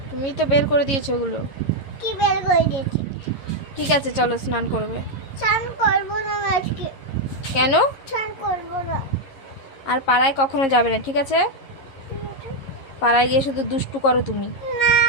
তুমি তো বের করে দিয়েছো ওগুলো। কি বের করে দিয়েছি? ঠিক আছে চলো স্নান করবে। স্নান করবো না আমি আজকে, কেন? স্নান করবো না। আর পাড়ায় কখনো যাবে না, ঠিক আছে? ঠিক আছে? পাড়ায় গিয়ে শুধু দুষ্টু করো তুমি। না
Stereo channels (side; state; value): right; late; 11 ms